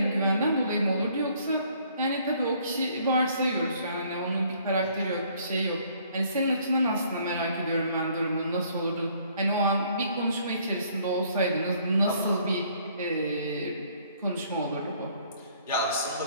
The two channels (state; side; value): inverted; both; correlation -0.61